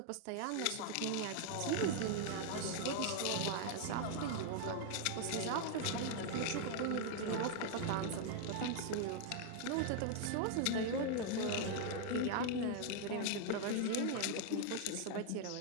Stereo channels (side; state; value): both; different; correlation 0.00